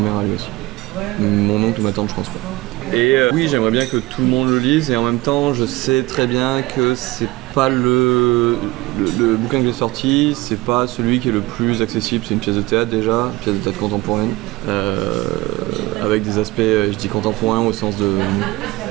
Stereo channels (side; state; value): left; quieter; 20.7 dB